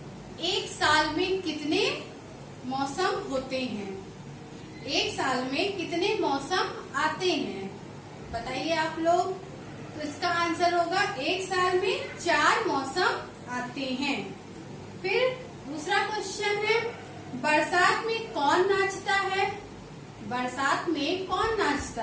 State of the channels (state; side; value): identical; both; correlation 1.00